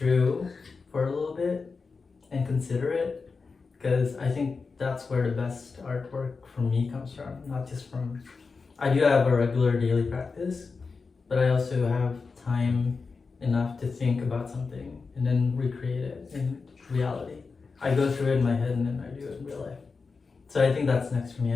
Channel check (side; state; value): right; quieter; 4.6 dB